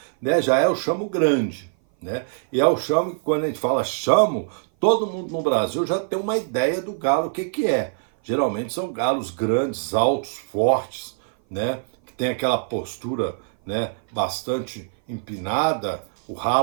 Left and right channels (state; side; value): silent; left; 58 dB below the other